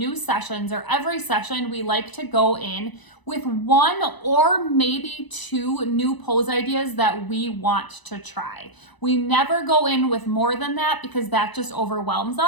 sessions, or every session we like to go in with one or maybe two new pose ideas that we want to try. We never go in with more than that because that just overwhelms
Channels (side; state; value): right; late; 1.0 ms